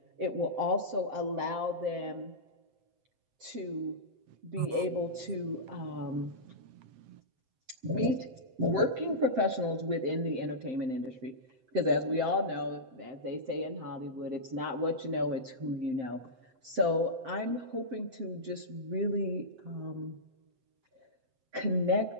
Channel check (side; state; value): left; late; 7.7 ms